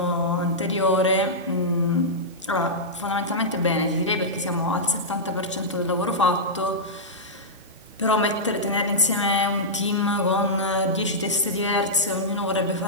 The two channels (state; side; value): normal; both; correlation -0.11